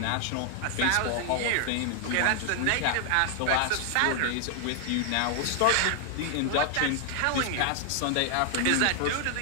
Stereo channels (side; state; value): both; different; correlation 0.00